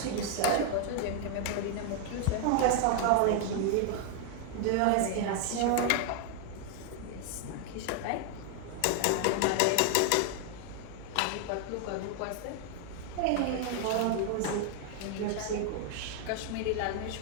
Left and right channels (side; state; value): both; different; correlation 0.00